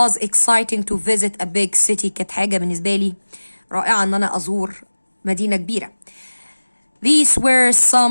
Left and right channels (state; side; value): inverted; both; correlation -1.00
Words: exciting to visit a big city، كانت حاجة بالنسبة لي رائعة ان انا ازور مدينة كبيرة. these were